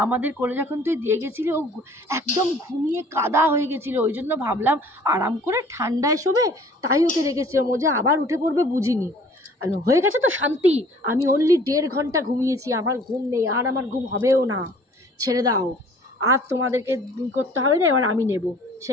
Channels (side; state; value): both; normal; correlation 0.52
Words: আমাদের কোলে যখন তুই দিয়ে গেছিলি ও একদম ঘুমিয়ে কাদা হয়ে গেছিলো, ওই জন্য ভাবলাম আরাম করে ঠান্ডায় শোবে, তাই ওকে রেখেছিলাম, ও যে আবার উঠে পড়বে বুঝিনি। হয়ে গেছে তো শান্তি, আমি অনলি 1.5 ঘন্টা ঘুমিয়েছি, আমার ঘুম নেই, আর আমার ঘুম হবেও না, ছেড়ে দাও, আর তোমাদেরকে করতে হবে না, এবার আমি নেব।